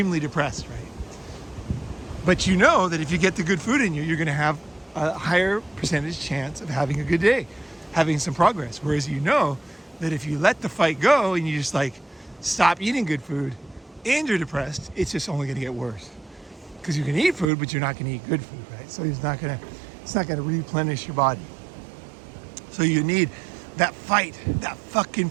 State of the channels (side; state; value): left; drops out; at 17.4 s